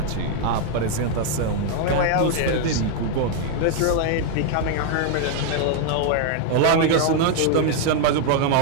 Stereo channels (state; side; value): different; both; correlation 0.00